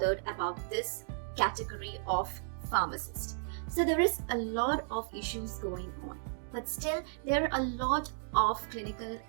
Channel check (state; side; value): silent; left; digital silence